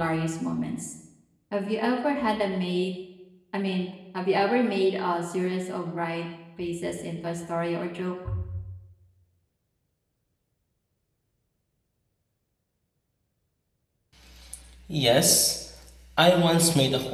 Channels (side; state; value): both; identical; correlation 1.00